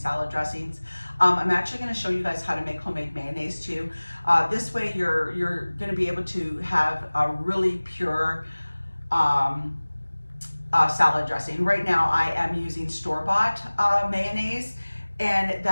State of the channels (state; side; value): inverted; both; correlation -1.00